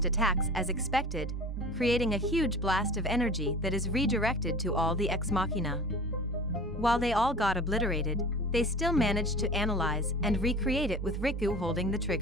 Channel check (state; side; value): normal; both; correlation 0.39